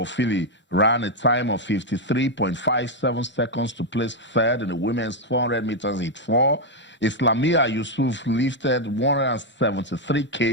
ran a time of 53.57 seconds to place 3rd in the women's 400 meters heat 4. Islamia Yusuf lifted 173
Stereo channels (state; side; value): normal; both; correlation 0.02